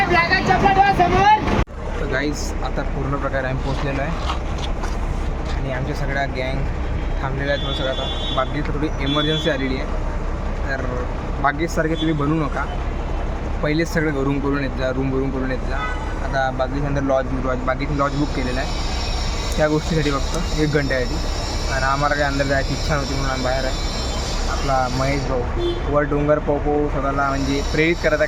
तर गाईज आता पूर्ण प्रकारे आम्ही पोचलेलो आहे आणि आमच्या सगळ्या गँग थांबलेल्या आहेत. थोडं सगळं आता बागेत थोडी इमर्जन्सी आलेली आहे. तर बागेतसारखे तुम्ही बनवू नका. पहिलेच सगळं रूम करून येत जा, येत जा. आता बागेच्या अंदर बागेची लॉज बुक केलेला आहे त्या गोष्टीसाठी, फक्त 1 घंट्यासाठी. आणि आम्हाला काही अंदर जायची इच्छा नव्हती म्हणून आम्ही बाहेर आहे. आपला महेश भाऊ वर डोंगर पाहू स्वतःला म्हणजे प्रेरित करत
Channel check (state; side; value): identical; both; correlation 1.00